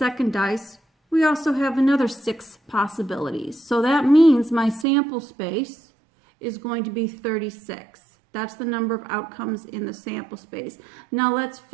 dice, we also have another 6 possibilities. So that means my sample space is going to be 36. That's the number of outcomes in the sample space. Now let's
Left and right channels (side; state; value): left; drops out; at 4.9 s